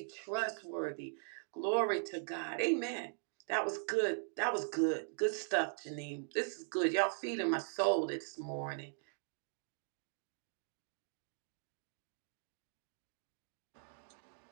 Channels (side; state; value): left; silent; digital silence